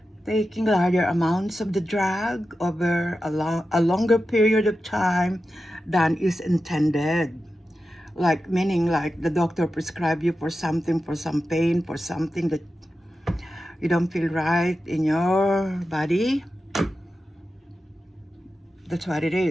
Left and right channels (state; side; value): normal; both; correlation 0.91